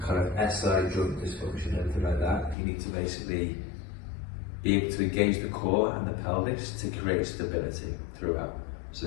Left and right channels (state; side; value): drops out; right; at 2.6 s